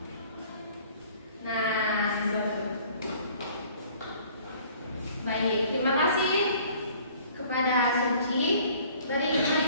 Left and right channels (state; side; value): inverted; both; correlation -0.53